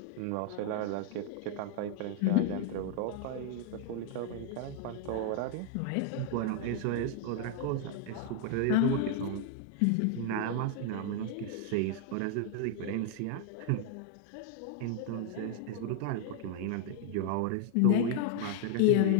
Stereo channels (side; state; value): both; different; correlation 0.00